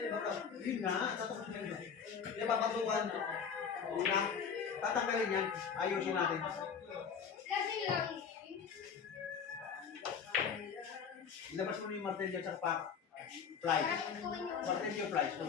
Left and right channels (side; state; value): right; quieter; 6.7 dB